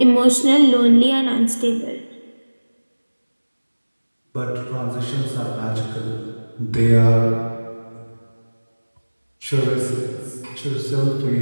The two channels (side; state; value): both; inverted; correlation -1.00